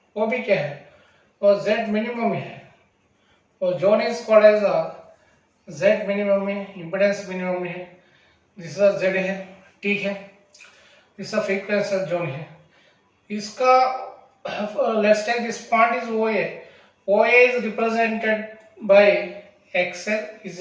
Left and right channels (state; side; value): identical; both; correlation 1.00